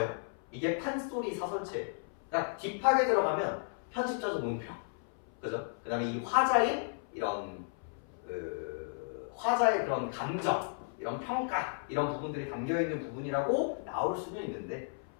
이게 판소리 사설체. 그러니까 딥하게 들어가면 편집자적 논평. 그죠? 그 다음에 이 화자의 이런, 화자의 그런 감정, 이런 평가, 이런 부분들이 담겨있는 부분이라고 나올 수는 있는데,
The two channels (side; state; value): right; silent; 55 dB below the other